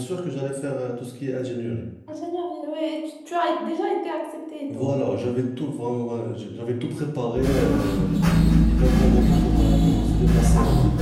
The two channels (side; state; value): both; identical; correlation 1.00